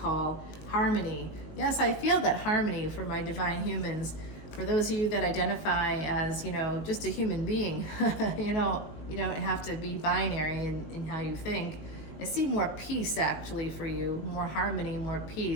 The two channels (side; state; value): right; late; 19 ms